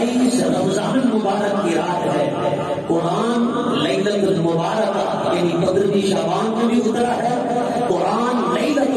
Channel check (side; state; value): both; identical; correlation 1.00